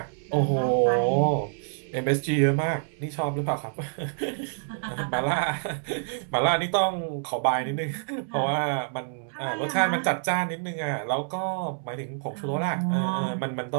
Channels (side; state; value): left; silent; digital silence